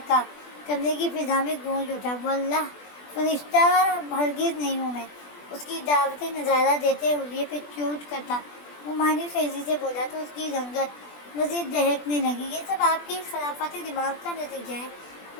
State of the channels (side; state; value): right; late; 20 ms